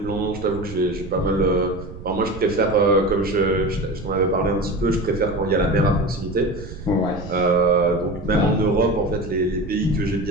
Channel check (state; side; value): noise; right; rumble, 13 dB below the sound